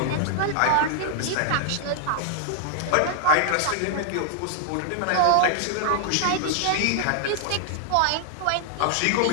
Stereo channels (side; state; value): both; different; correlation 0.00